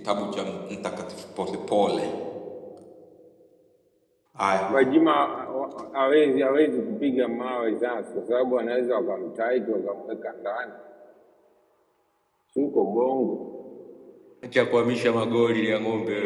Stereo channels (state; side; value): identical; both; correlation 1.00